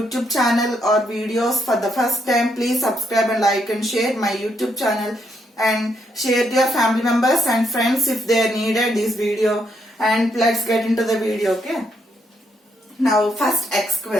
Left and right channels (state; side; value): normal; both; correlation 0.76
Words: channel or videos for the first time, please subscribe and like and share my YouTube channel and share to your family members and friends if they needed this video. And let's get into the video. Okay. Now first x